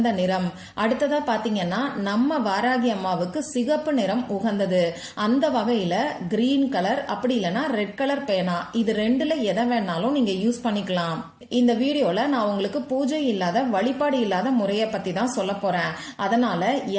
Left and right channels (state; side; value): identical; both; correlation 1.00